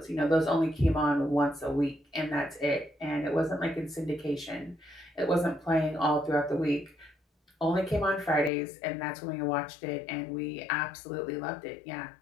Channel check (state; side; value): drops out; right; at 8.5 s